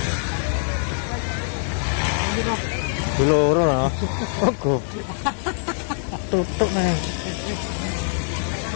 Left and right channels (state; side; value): silent; right; 63 dB below the other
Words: Loro lah. Oh, goblok. Tutuk nih.